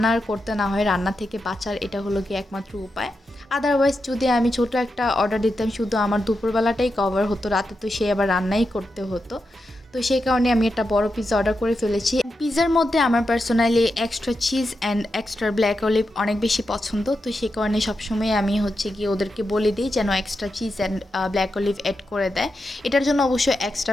করতে না হয়, রান্না থেকে বাঁচার এটা হলো গিয়ে একমাত্র উপায়। আদারওয়াইজ যদি আমি ছোটো একটা অর্ডার দিতাম, শুধু আমার দুপুরবেলাটাই কভার হতো, রাতে তো সে আবার রান্নাই করতে হতো। তো সেই কারণে আমি একটা বড় পিৎজা অর্ডার করে ফেলেছি। পিৎজার মধ্যে আমার personally extra cheese and extra black olive অনেক বেশি পছন্দ। তো সেই কারণে সবসময় আমি হচ্ছে গিয়ে ওদেরকে বলে দিই যেন extra cheese and black olive add করে দেয়। এটার জন্য অবশ্যই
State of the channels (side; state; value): both; normal; correlation 0.88